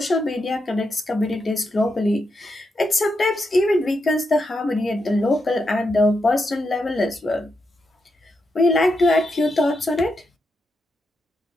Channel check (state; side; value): normal; both; correlation 0.84